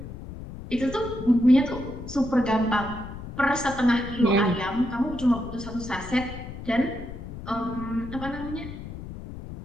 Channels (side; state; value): left; noise; rumble, 11 dB below the sound